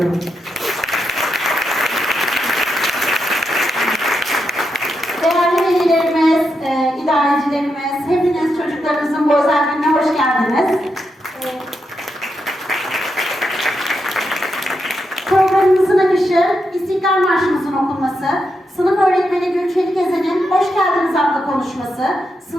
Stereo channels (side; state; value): both; normal; correlation 0.84